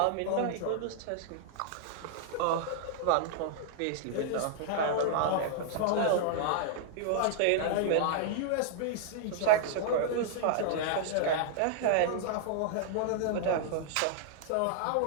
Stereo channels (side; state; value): both; different; correlation -0.01